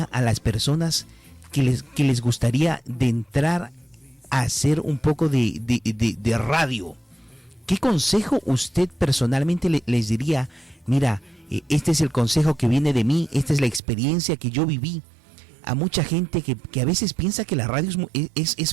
a las personas que les gustaría de entrar a hacer un poco de radio? ¿Qué consejo usted personalmente les diría? Mira, este es el consejo que viene de mí, esta es la experiencia que yo viví. A mucha gente que a veces piensa que la radio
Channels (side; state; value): left; drops out; at 13.8 s